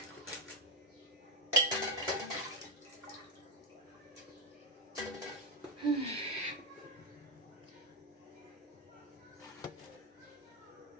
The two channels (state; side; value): normal; both; correlation 0.05